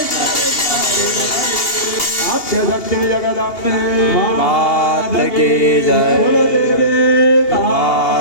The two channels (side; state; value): right; late; 2.8 ms